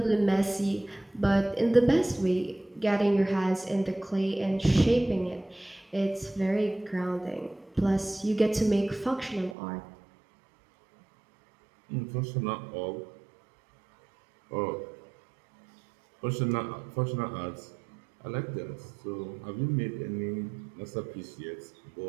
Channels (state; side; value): drops out; left; at 9.6 s